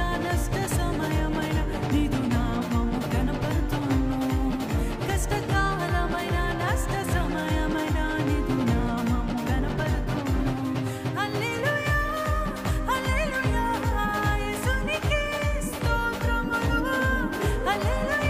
నష్ట సమయమైన నీదు నామము కనపడుతును. కష్టకాలమైన నష్ట సమయమైన నీదు నామము కనపడుతును. హల్లెలూయా హల్లెలూయా యేసునికే స్తోత్రములు.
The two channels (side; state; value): both; identical; correlation 1.00